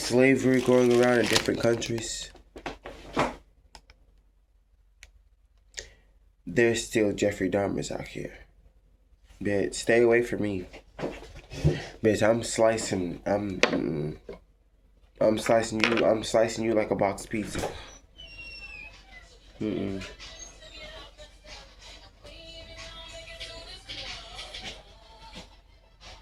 going around in different countries, there's still Jeffrey Dahmers out here. Bitch, stay away from me. Bitch, I'm slicing you like a box pizza.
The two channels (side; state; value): both; identical; correlation 1.00